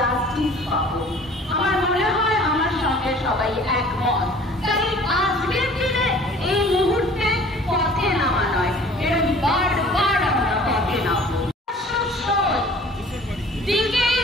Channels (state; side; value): normal; both; correlation 0.49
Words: পাবো। আমার মনে হয় আমার সঙ্গে সবাই একমত। তাই আজকের দিনে এই মুহূর্তে পথে নামা নয়, এরকম বারবার আমরা পথে নামবো। দিকে